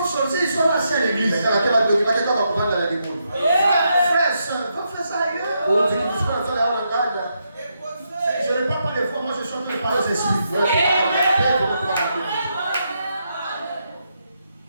sortis, ils sont assis à l'église. Frère, soeur, va faire ça ailleurs. Je ne parle pas de foi, moi je chante les paroles des esprits.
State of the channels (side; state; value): both; inverted; correlation -0.81